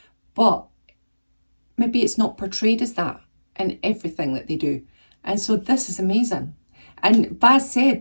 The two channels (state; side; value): inverted; both; correlation -1.00